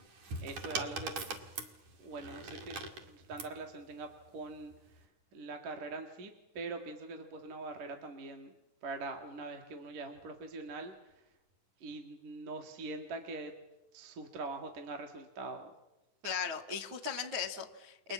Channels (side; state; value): left; late; 10 ms